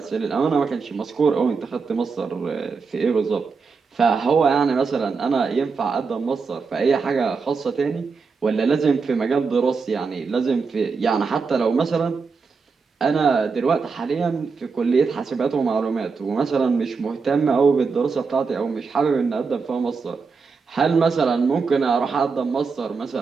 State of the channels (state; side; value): quieter; left; 5.0 dB